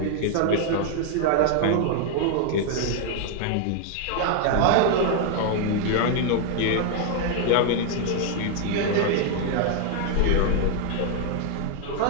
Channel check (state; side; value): different; both; correlation 0.00